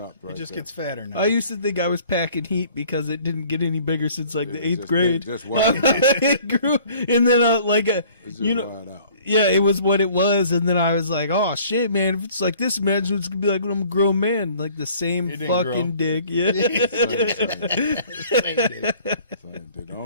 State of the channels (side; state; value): both; inverted; correlation -0.53